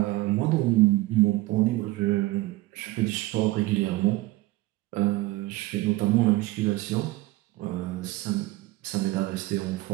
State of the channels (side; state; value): left; quieter; 18.9 dB